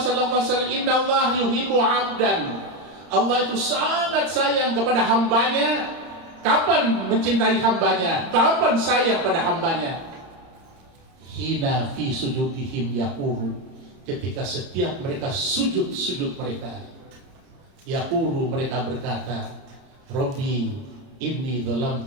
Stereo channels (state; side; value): late; left; 30 ms